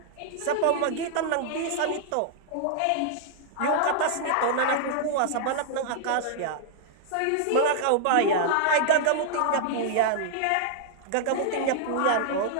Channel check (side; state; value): both; different; correlation -0.01